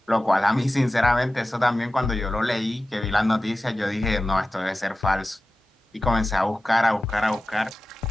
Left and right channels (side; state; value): both; normal; correlation 0.94